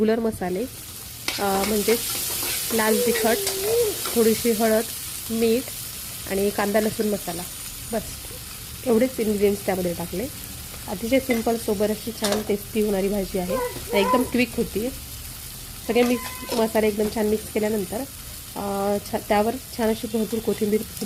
मसाले म्हणजे लाल तिखट, थोडीशी हळद, मीठ आणि कांदा लसूण मसाला, बस एवढेच इन्ग्रेडियंट्स त्यामध्ये टाकले। अतिशय सिंपल सोबर अशी छान टेस्टी होणारी भाजी आहे आणि एकदम क्विक होती। सगळे मसाले एकदम छान मिक्स केल्यानंतर त्यावर छान अशी भरपूर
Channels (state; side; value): identical; both; correlation 1.00